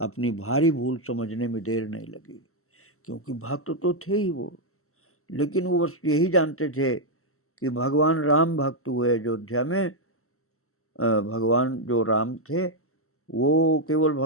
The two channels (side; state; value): right; late; 0.63 ms